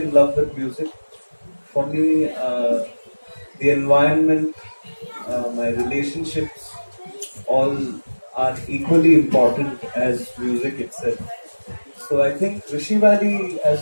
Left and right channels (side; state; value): both; inverted; correlation -1.00